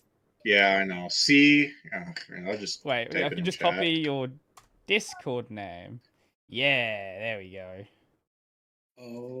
Yeah, I know. C. I'll just wait. I can just copy your Discord name. Yeah, there we go.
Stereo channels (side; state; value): both; identical; correlation 1.00